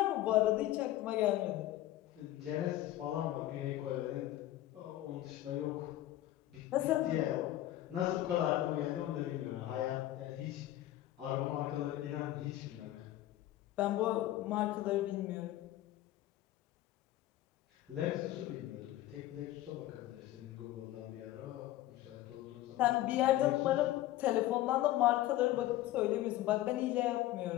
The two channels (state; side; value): quieter; right; 14.7 dB